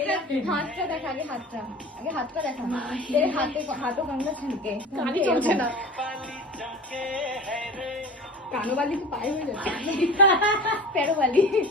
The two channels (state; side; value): normal; both; correlation 0.36